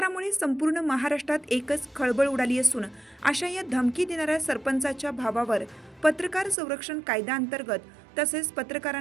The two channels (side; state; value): left; drops out; at 6.6 s